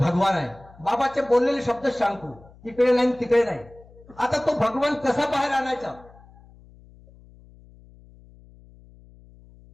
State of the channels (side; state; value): left; noise; hum, 24 dB below the sound